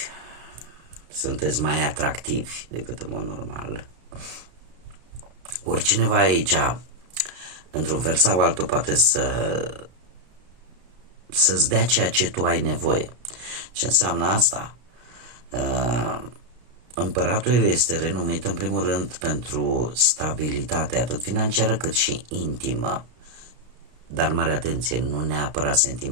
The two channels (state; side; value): late; left; 33 ms